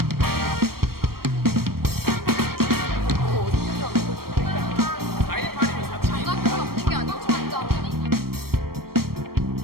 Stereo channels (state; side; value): late; left; 0.94 ms